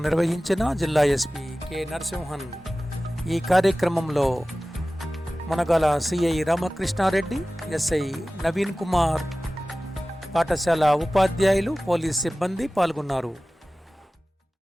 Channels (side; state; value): both; normal; correlation 0.97